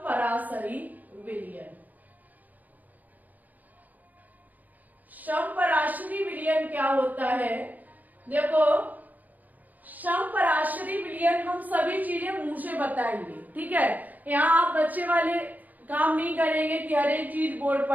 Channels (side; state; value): left; late; 0.081 ms